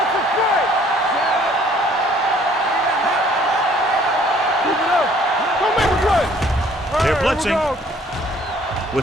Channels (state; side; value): normal; both; correlation 0.58